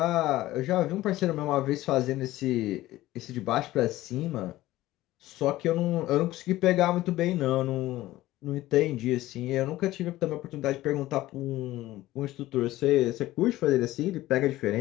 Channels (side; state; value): right; quieter; 16.3 dB